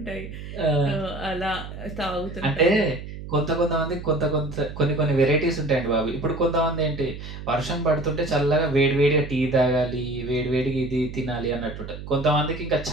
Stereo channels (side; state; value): right; noise; hum, 11 dB below the sound